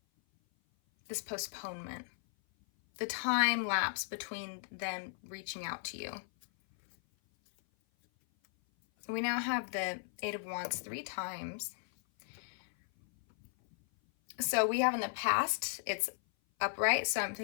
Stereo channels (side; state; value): right; silent; 54 dB below the other